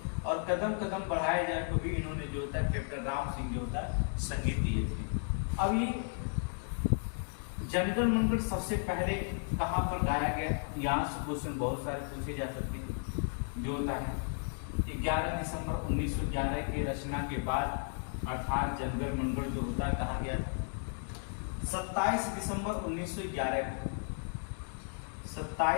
और कदम कदम बढ़ाए जाए तो भी इन्होंने जो होता है कैप्टन राम सिंह जो होता है संगीत दिए थे। अब ये जनगण मंगल सबसे पहले कहाँ पर गाया गया, यहाँ से क्वेश्चन बहुत सारे पूछे जा सकते हैं। जो होता है 11 दिसंबर 1911 के रचना के बाद अर्थात जनगण मंगल जो होता है कहा गया था 27 दिसंबर 1911 को,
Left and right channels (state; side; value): silent; right; 55 dB below the other